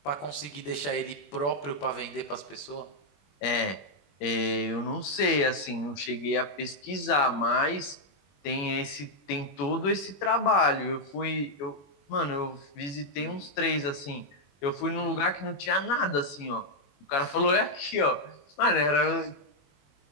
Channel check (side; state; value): right; late; 21 ms